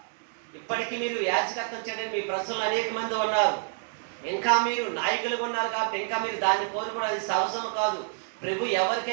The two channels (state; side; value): silent; left; digital silence